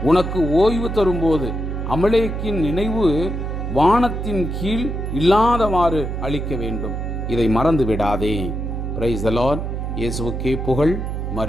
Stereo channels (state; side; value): noise; right; hum, 4 dB below the sound